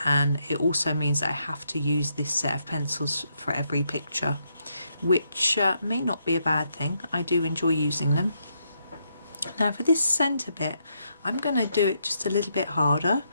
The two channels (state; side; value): inverted; both; correlation -0.78